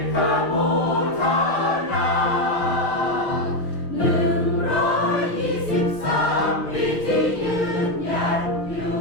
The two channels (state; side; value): late; right; 6.4 ms